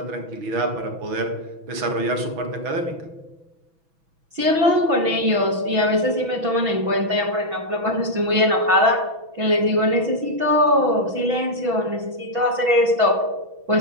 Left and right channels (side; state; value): left; late; 6.1 ms